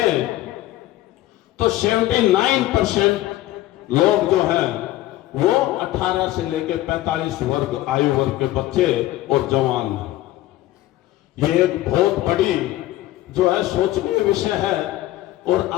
तो 79% लोग जो हैं वो 18 से लेकर 45 वर्ग आयु वर्ग के बच्चे और जवान हैं। ये एक बहुत बड़ी जो है सोचनीय विषय है। और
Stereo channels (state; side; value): quieter; right; 15.6 dB